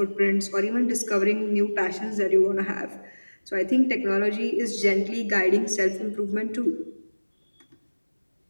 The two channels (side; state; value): both; inverted; correlation -1.00